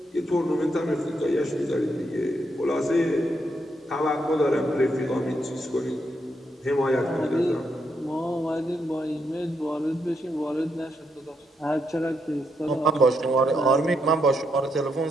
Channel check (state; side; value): normal; both; correlation 0.79